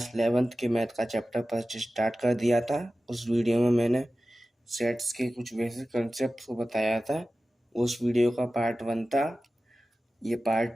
11th के मैथ का चैप्टर फर्स्ट स्टार्ट कर दिया था। उस वीडियो में मैंने सेट्स के कुछ बेसिक कंसेप्ट को बताया था। उस वीडियो का पार्ट 1 था, ये पार्ट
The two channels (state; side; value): normal; both; correlation 0.95